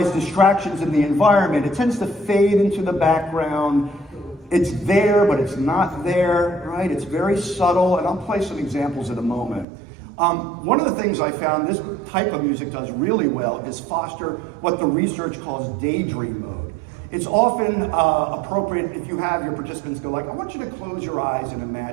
distractions in the environment. It tends to fade into the background. It's there, but it's not there, right? It's very subtle, and I'll play some examples in a moment. One of the things I found this type of music does really well is foster what the research calls daydream mode. It's often appropriate if you have your participants go like, I want you to close your eyes and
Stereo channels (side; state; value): left; drops out; at 9.7 s